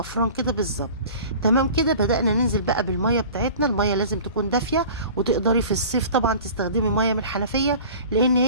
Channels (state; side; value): inverted; both; correlation -0.42